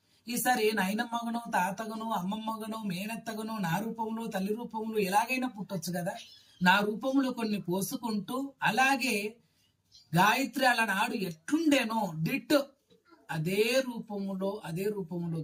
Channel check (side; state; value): both; identical; correlation 1.00